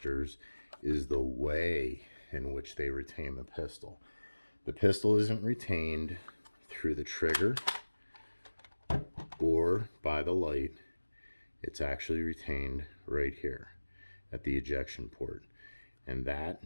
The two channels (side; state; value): both; inverted; correlation -1.00